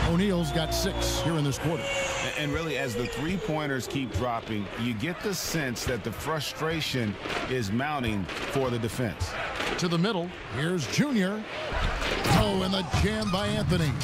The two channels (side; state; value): both; identical; correlation 1.00